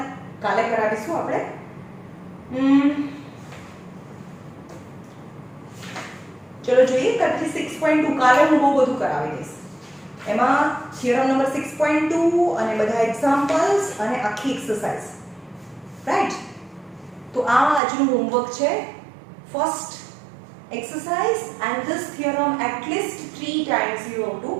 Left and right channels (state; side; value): drops out; left; at 17.8 s